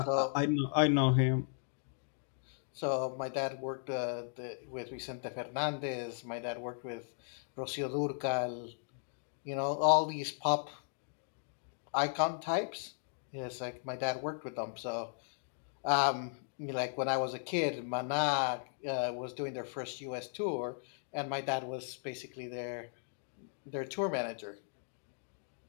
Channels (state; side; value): silent; right; digital silence